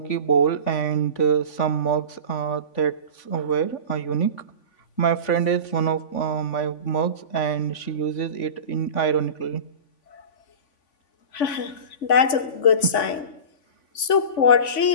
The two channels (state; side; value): late; right; 3.5 ms